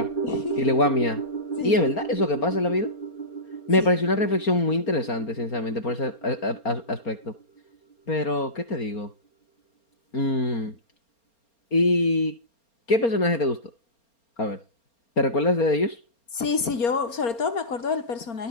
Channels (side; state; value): right; late; 4.3 ms